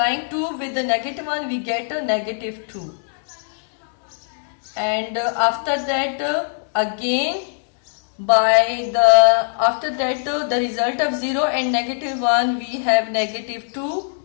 2 with the negative 1, we get a negative 2. And after that, again, after that, the result of 0 and negative 1, we have negative 2.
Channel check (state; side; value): silent; right; digital silence